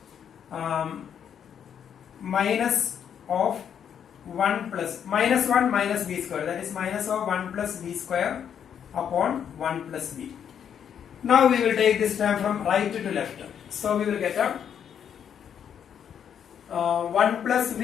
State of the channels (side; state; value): right; quieter; 8.5 dB